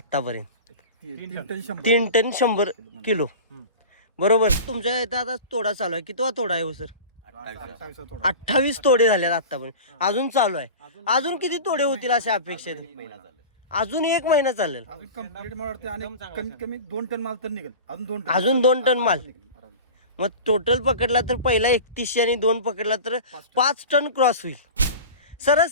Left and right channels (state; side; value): inverted; both; correlation -0.33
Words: 3 टन 100 3 टन 100 किलो बरोबर. तुमच्या इथं आता तोडा चालू आहे. कितवा तोडा आहे हो सर? 28 तोडा. 28 तोडे झालेत आतापर्यंत. अजून चालू आहे. अजून किती तोडे होतील अशा अपेक्षा आहेत? अजून 1 महिना चालेल. अजून कंप्लीट मला वाटतं आणि कमीत कमी 2 टन माल तर निघेल. अजून 2 टन माल. मग टोटल पकडला तर पहिला 3100 आणि 2 पकडला तर 5 टन क्रॉस होईल.